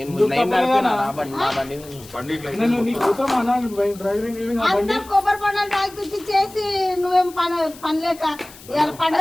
కొబ్బరి పండుగ తాగిపించి చేసి నువ్వేం పనిలేక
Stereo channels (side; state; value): left; noise; hiss, 20 dB below the sound